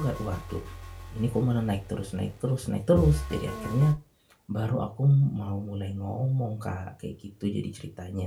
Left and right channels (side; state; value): both; identical; correlation 1.00